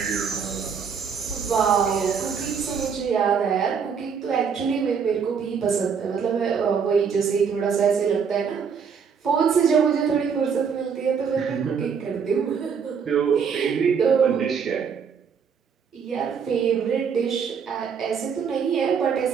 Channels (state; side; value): quieter; left; 6.5 dB